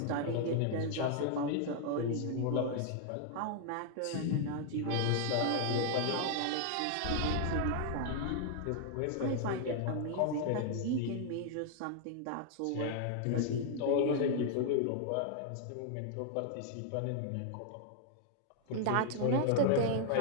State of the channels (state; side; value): different; both; correlation 0.00